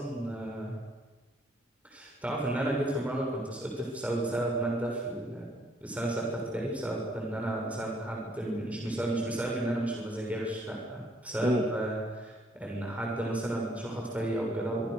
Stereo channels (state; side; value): normal; both; correlation 0.65